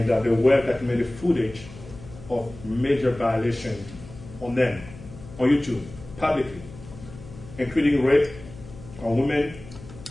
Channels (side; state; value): left; noise; hum, 16 dB below the sound